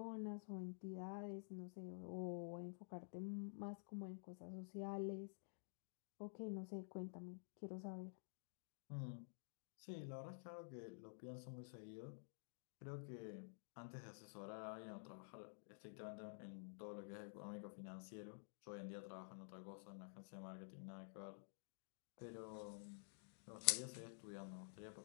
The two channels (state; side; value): silent; right; digital silence